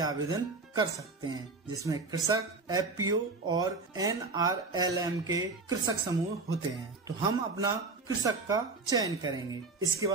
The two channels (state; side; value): quieter; left; 3.9 dB